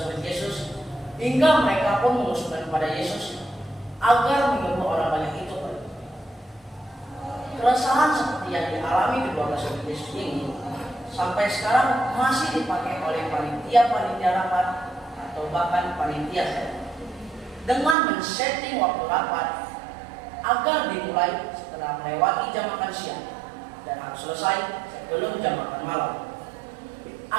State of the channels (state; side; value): drops out; left; at 17.9 s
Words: murid Yesus, hingga mereka pun mengusulkan kepada Yesus agar menyuruh orang banyak itu pergi. Keresahan seperti yang dialami kedua belas murid Yesus ini sampai sekarang masih dipakai oleh panitia rapat atau bahkan panitia sekolah, dengan men-setting waktu rapat agar dimulai setelah melewati jam makan siang dan harus selesai sebelum jam makan malam,